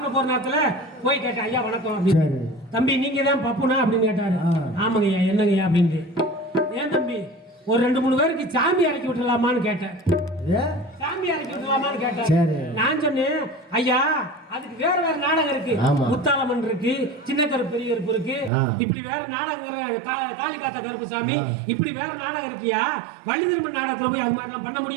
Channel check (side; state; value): left; drops out; at 18.5 s